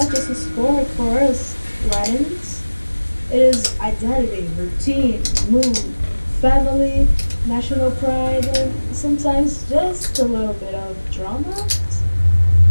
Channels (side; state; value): both; inverted; correlation -1.00